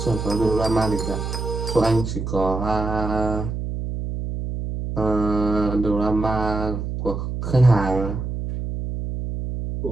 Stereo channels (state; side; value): noise; right; hum, 4 dB below the sound